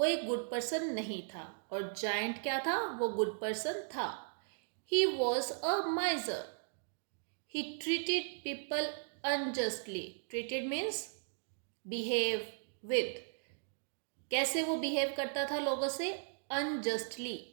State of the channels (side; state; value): left; silent; digital silence